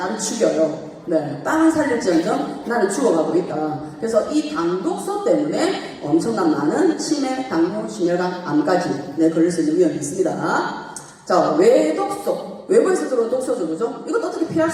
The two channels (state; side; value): identical; both; correlation 1.00